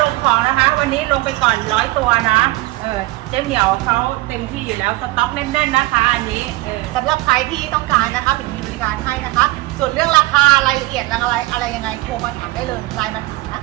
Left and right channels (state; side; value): quieter; left; 19.7 dB